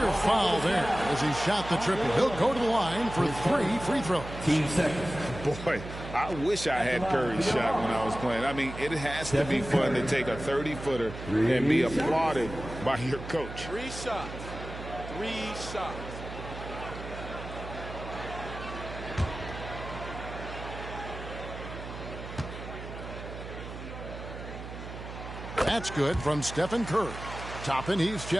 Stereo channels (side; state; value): right; noise; hum, 10 dB below the sound